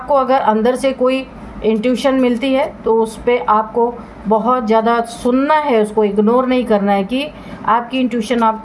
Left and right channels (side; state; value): both; identical; correlation 1.00